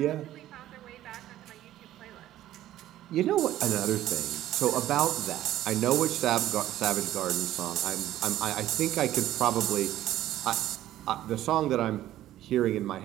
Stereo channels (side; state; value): left; quieter; 13.5 dB